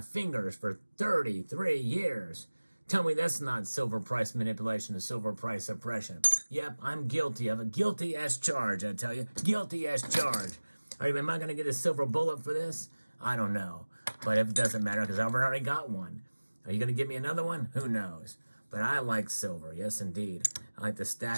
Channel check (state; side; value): inverted; both; correlation -1.00